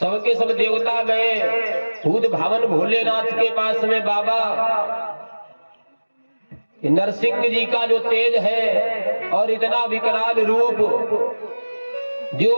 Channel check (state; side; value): inverted; both; correlation -1.00